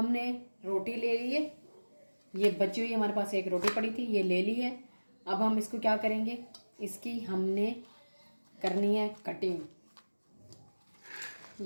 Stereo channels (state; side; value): inverted; both; correlation -1.00